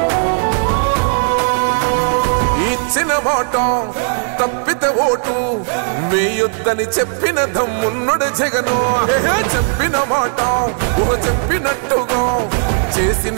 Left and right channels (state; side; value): silent; left; 61 dB below the other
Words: మాట తప్పితే ఓటు వేయొద్దని చెప్పిన దమ్మున్నడు జగను. చెప్పిన మాట చెప్పినట్టుగా